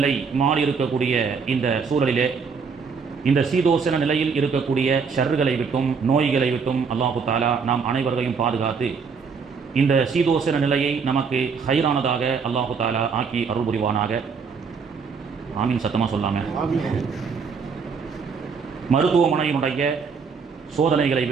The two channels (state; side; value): quieter; left; 5.6 dB